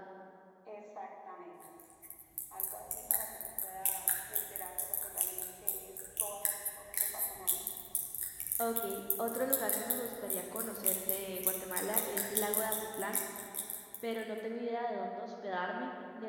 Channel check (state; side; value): identical; both; correlation 1.00